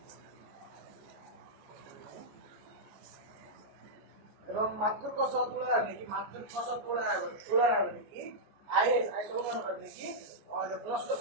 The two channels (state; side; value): late; left; 14 ms